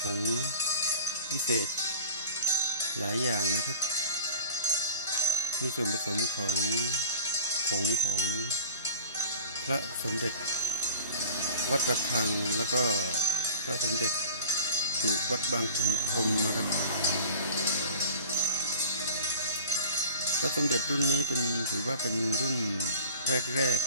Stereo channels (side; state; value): both; inverted; correlation -0.38